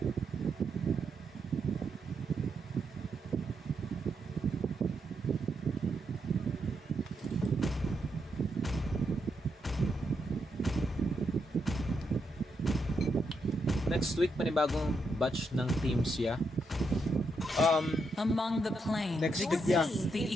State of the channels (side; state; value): both; normal; correlation 0.81